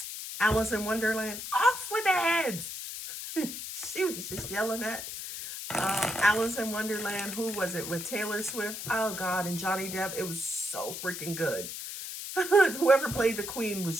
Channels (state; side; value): noise; left; hiss, 7 dB below the sound